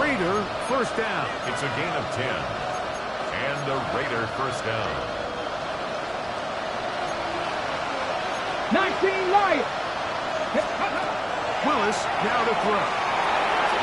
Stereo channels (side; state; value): both; identical; correlation 1.00